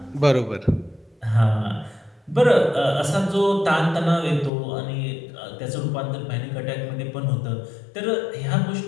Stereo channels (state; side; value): drops out; right; at 4.5 s